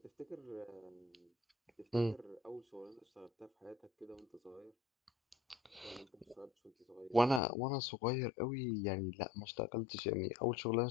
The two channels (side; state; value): right; drops out; at 7.4 s